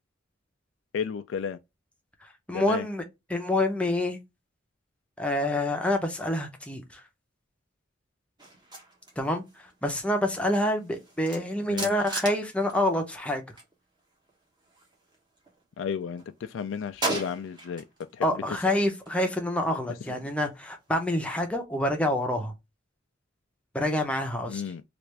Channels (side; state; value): both; normal; correlation 0.53